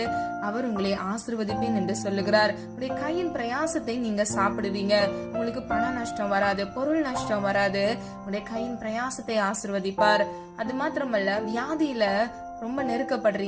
அவர் உங்களை ஆசீர்வதிப்பேன் என்று சொல்லுகிறார். உங்களுடைய கையின் பிரயாசத்தை நீங்க சாப்பிடுவீங்க. உங்களுக்கு பண நஷ்டம் வராது, பொருள் நஷ்டம் வராது. உங்களுடைய கையின் பிரயாசத்தை ஆசீர்வதிப்பார். அது மாத்திரமல்ல, வியாதியில ரொம்ப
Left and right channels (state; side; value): identical; both; correlation 1.00